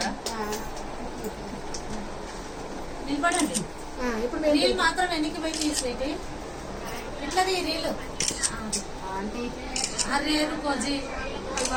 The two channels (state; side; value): identical; both; correlation 1.00